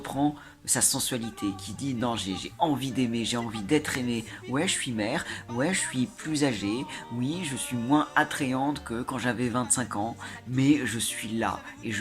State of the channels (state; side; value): identical; both; correlation 1.00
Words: sa sensualité, qui dit non, j'ai envie d'aimer, j'ai envie d'être aimée. Ouais, je suis mère, ouais, je suis plus âgée, oui, je suis moins attrayante que quand j'avais 25 ans, mais je suis là et